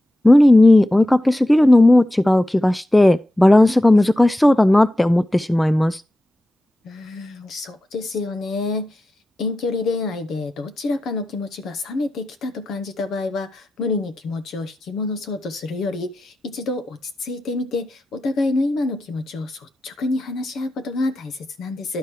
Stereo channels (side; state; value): both; normal; correlation 0.93